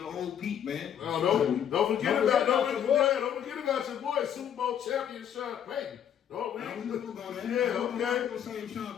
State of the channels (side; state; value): right; quieter; 9.2 dB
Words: old Pete, man. Don't forget about your boy, Super Bowl champion Sean Payton. Oh, man. I'm gonna go there. Yeah, okay. I'm gonna save Sean